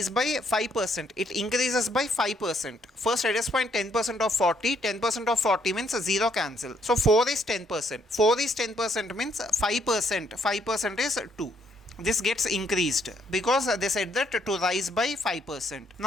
by 5%. It increases by 5%. First, let us find 10% of 40. 10% of 40 means 0 cancel. So 4 is 10%. 4 is 10% means 5%. 5% is 2. This gets increased because they said that to rise by 5%.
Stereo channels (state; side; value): normal; both; correlation 0.70